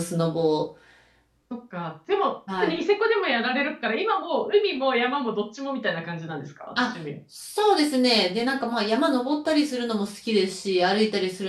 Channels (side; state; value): both; identical; correlation 1.00